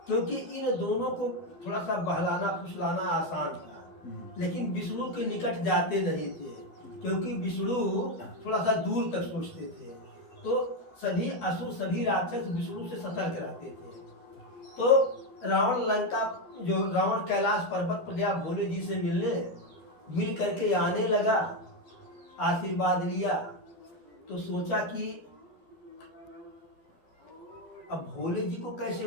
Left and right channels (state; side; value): late; right; 12 ms